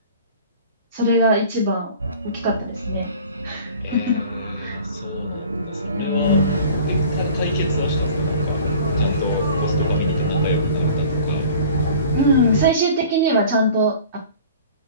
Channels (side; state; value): both; inverted; correlation -0.45